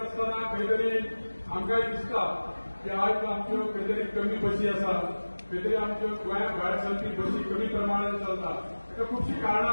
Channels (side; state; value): both; inverted; correlation -1.00